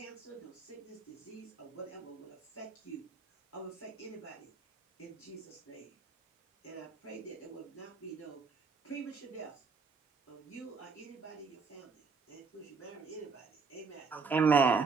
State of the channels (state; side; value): quieter; left; 4.8 dB